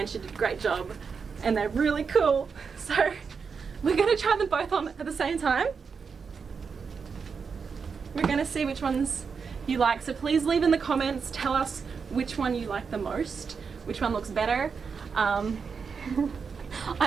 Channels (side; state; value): left; quieter; 5.7 dB